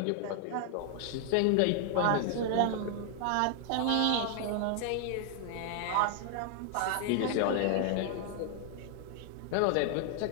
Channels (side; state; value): both; different; correlation 0.00